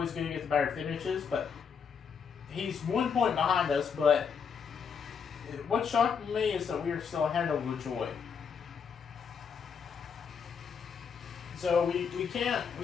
going to get the better finishes, but he's 1 point behind us, but what shocked me is that we are still ahead of LaJoy. So we can't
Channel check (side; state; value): right; quieter; 6.5 dB